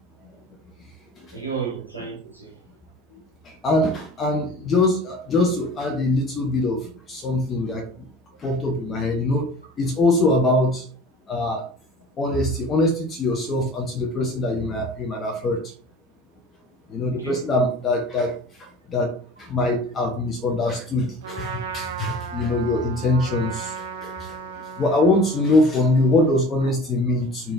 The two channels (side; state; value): both; normal; correlation 0.43